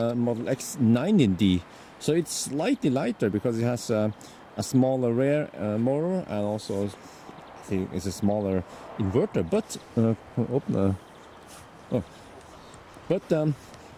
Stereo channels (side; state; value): both; identical; correlation 1.00